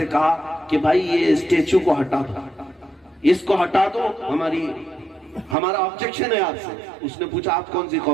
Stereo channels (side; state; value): left; drops out; at 5.6 s